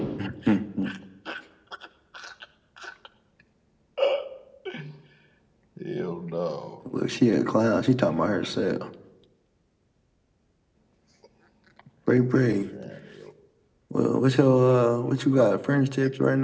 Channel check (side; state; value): both; identical; correlation 1.00